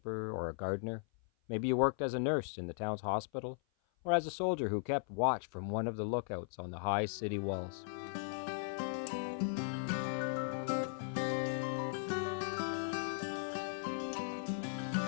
or a gardener. Maybe you worked as a nurse in the town's hospital, or as a soldier who kept watch from one of the lookouts on the high city walls.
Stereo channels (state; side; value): silent; right; 53 dB below the other